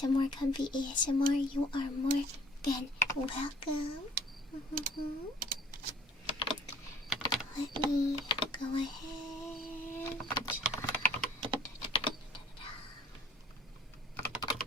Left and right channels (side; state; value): both; normal; correlation 0.54